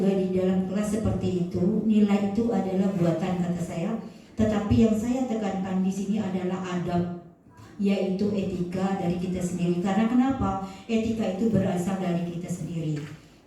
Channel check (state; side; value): identical; both; correlation 1.00